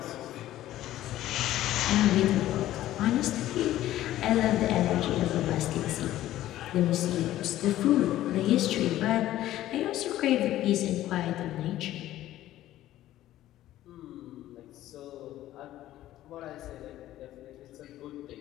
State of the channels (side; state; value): right; quieter; 14.0 dB